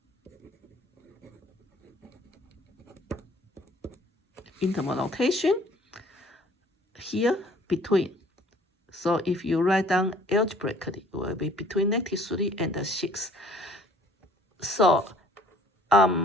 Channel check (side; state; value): both; normal; correlation 0.55